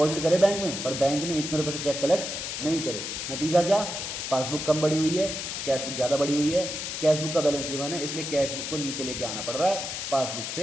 करे बैंक में, पर बैंक ने इतने रुपए से चेक कलेक्ट नहीं करे। नतीजा क्या, पासबुक कम बढ़ी हुई है, कैश बुक ज़्यादा बढ़ी हुई है। कैश बुक का बैलेंस गिवन है, इसलिए कैश बुक को नीचे लेके आना पड़ रहा है पासबुक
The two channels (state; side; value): noise; left; hiss, 5 dB below the sound